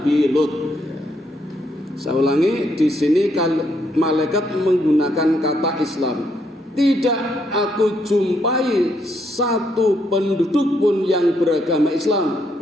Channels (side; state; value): both; normal; correlation 0.75